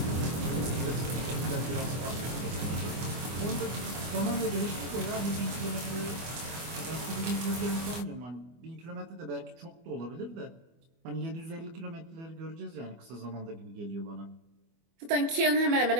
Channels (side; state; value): left; late; 24 ms